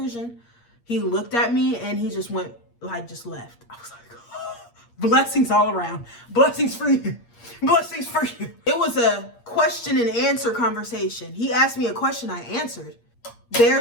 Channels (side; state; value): right; late; 8.5 ms